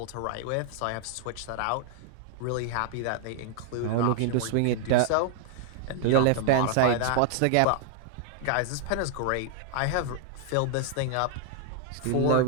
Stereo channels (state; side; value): different; both; correlation 0.00